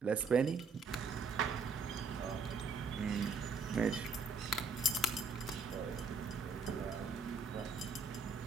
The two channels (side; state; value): left; quieter; 4.1 dB